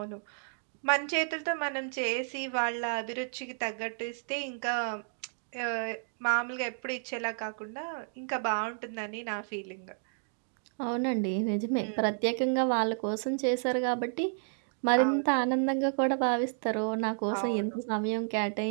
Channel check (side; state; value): left; silent; digital silence